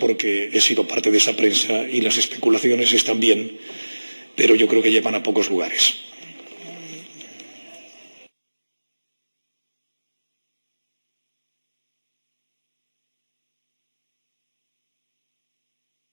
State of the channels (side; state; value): both; inverted; correlation -1.00